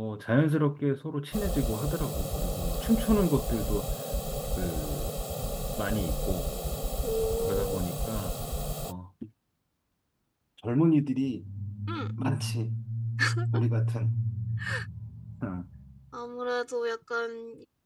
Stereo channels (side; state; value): both; identical; correlation 1.00